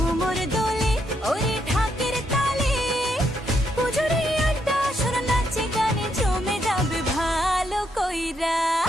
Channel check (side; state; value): both; normal; correlation 0.77